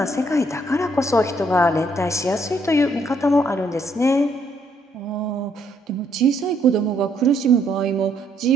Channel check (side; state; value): both; normal; correlation 0.70